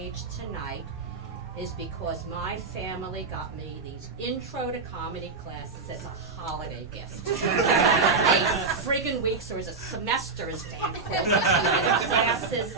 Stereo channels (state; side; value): quieter; left; 4.2 dB